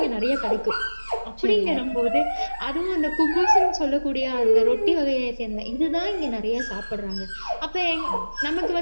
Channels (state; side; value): inverted; both; correlation -1.00